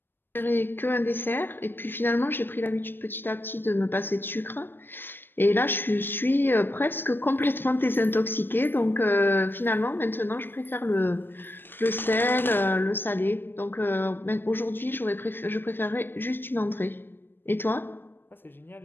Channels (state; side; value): late; right; 0.098 ms